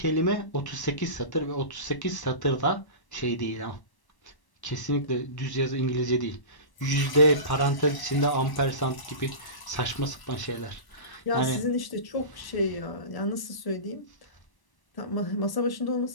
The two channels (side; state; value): right; late; 1.1 ms